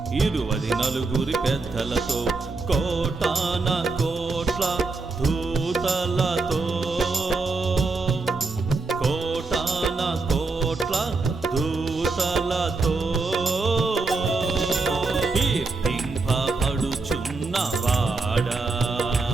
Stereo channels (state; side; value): quieter; left; 3.8 dB